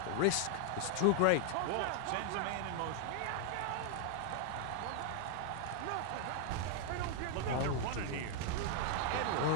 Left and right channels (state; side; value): different; both; correlation 0.00